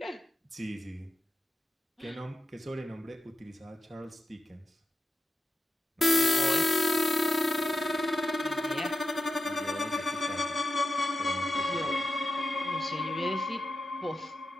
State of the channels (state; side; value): normal; both; correlation 0.90